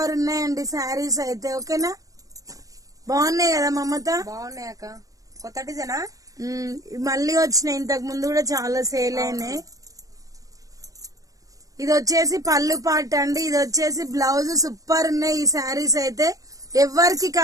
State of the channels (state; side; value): late; left; 0.17 ms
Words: ఉన్నాయండి శారీస్ అయితే. ఓకేనా, బాగున్నాయి కదా మమత? బాగున్నాయి అక్క. కొత్త డిజైనా? మళ్ళీ వచ్చినాయి. ఇంతకు ముందు కూడా చాలా సేల్ అయినాయి. ఇది వచ్చేసి పళ్ళు పార్ట్ అండి. ఇది వచ్చేసి బ్లౌజ్. సూపర్ ఉన్నాయి ఈ శారీస్ అయితే. ఎవరికి